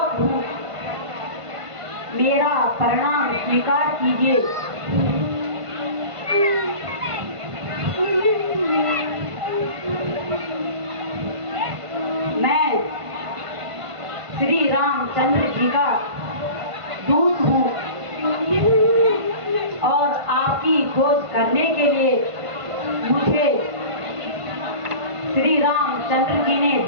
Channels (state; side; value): late; left; 1.5 ms